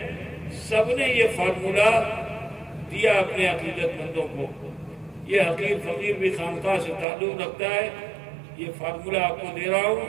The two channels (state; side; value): drops out; left; at 7.1 s